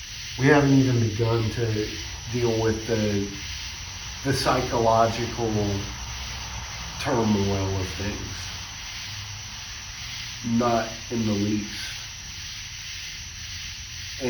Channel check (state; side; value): identical; both; correlation 1.00